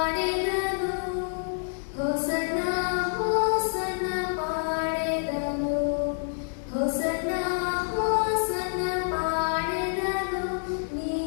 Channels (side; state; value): right; silent; digital silence